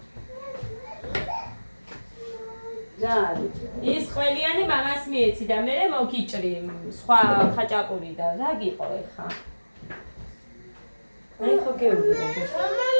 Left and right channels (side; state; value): both; inverted; correlation -1.00